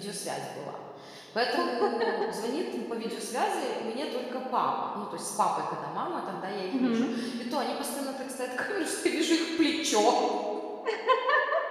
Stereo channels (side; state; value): both; identical; correlation 1.00